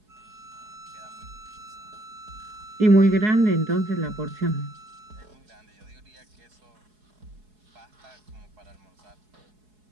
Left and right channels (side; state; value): left; late; 4.7 ms